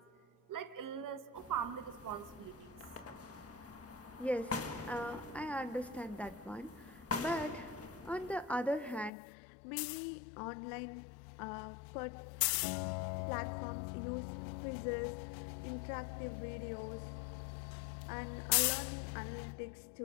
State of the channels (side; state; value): right; drops out; at 9.1 s